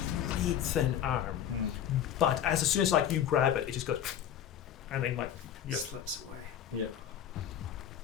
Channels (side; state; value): right; quieter; 9.8 dB